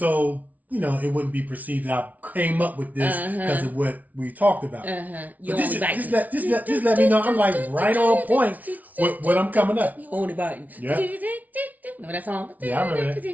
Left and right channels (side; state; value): left; late; 0.074 ms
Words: it wouldn't be perceived that I came up with this because of what we talked about. You But just let me know I'm like right on point with what I'm coming up. You only biting. Yeah. Remember that song? Yeah, I remember that.